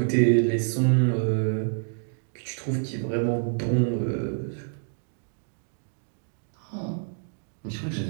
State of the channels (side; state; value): left; silent; digital silence